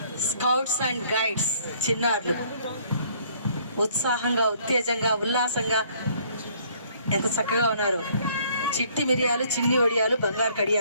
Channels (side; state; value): both; inverted; correlation -0.61